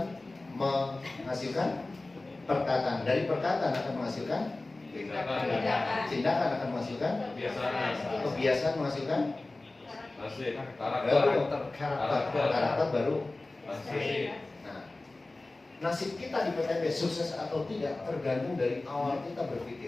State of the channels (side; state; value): right; quieter; 3.0 dB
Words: menghasilkan perkataan, dari perkataan akan menghasilkan tindakan, akan menghasilkan kebiasaan, menghasilkan Nasib. baru karakter baru. Nasib. Nah, nasib kita di PTB sukses atau tidak tergantung dari awal kita